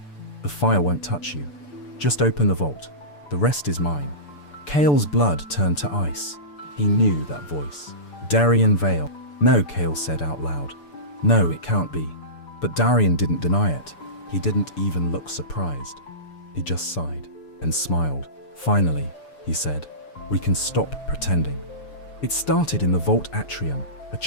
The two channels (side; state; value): right; late; 6.9 ms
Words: The fire won't touch you. Just open the vault. The rest is mine. Kale's blood turned to ice. He knew that voice. Darian Vale. No, Kale said out loud. No, it can't be. But Darian didn't deny it. He didn't even look surprised. He just sighed and smiled. Finally, he said, we can stop pretending. It started in the vault atrium, a